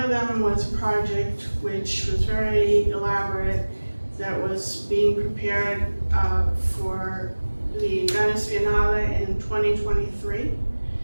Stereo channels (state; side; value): inverted; both; correlation -1.00